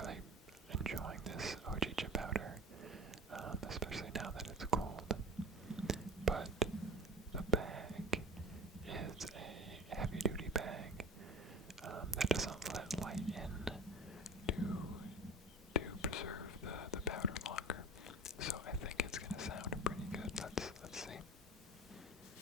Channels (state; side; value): normal; both; correlation 0.37